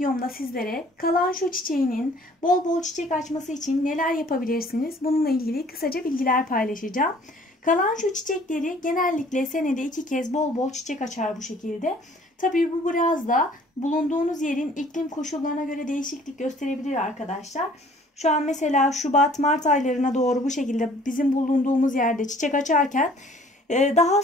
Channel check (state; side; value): normal; both; correlation 0.55